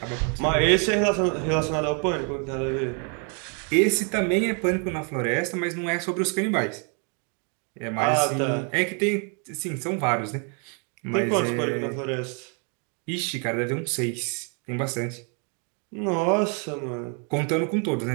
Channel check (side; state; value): left; quieter; 38.5 dB